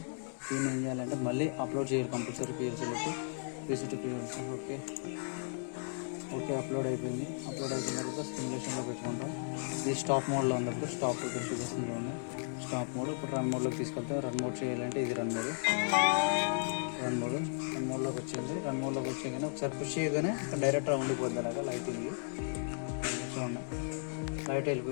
దీన్ని ఏం చేయాలంటే మళ్ళీ అప్లోడ్ చేయాలి కంపల్సరీ PLCలోకి. ఓకే, అప్లోడ్ అయిపోయింది. అయిపోయిన తర్వాత సిమ్యులేషన్లో పెట్టుకుంటాం. ఇది స్టాప్ మోడ్లో ఉన్నప్పుడు స్టాప్ చూపిస్తుంది చూడండి. Stop mode. ఇప్పుడు రన్ మోడ్లోకి తీసుకెళ్తాం. రన్ మోడ్ చేయాలంటే ఇది రన్ మోడ్లోకి వచ్చింది. రన్ మోడ్లోకి వచ్చాగానే ఒకసారి పుష్ చేయగానే డైరెక్ట్ ఉండిపోద్ది. అలాగా లైటింగ్ చూడండి, లైట్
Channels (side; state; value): right; silent; digital silence